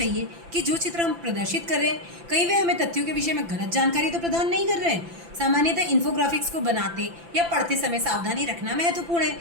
कि जो चित्र हम प्रदर्शित कर रहे हैं कहीं वे हमें तथ्यों के विषय में गलत जानकारी तो प्रदान नहीं कर रहे हैं। सामान्यतः इन्फोग्राफिक्स को बनाते या पढ़ते समय सावधानी रखना महत्वपूर्ण है,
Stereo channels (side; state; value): left; late; 5.9 ms